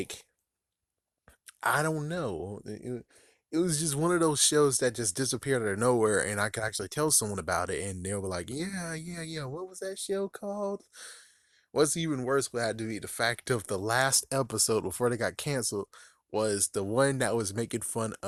I don't know. It was just one of those shows that just disappeared out of nowhere, and I could actually tell someone about it, and they were like, "Yeah, yeah, yeah. What was that show called?" What's even worse would have to be the fact of the last episode before they got canceled was the one that was making fun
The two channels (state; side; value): identical; both; correlation 1.00